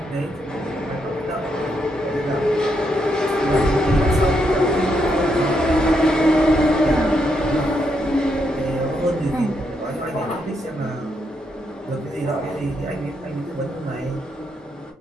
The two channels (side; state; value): both; normal; correlation 0.79